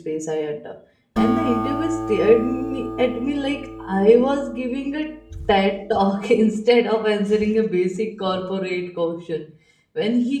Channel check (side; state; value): both; identical; correlation 1.00